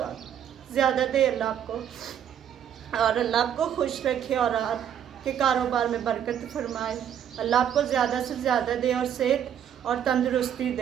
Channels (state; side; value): quieter; left; 9.4 dB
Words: ज़्यादा दे, अल्लाह आपको, और अल्लाह आपको खुश रखे और आपके कारोबार में बरकत फरमाए। अल्लाह आपको ज़्यादा से ज़्यादा दे और सेहत और तंदुरुस्ती